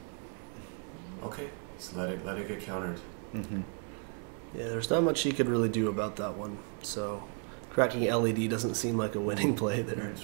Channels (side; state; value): left; quieter; 39.6 dB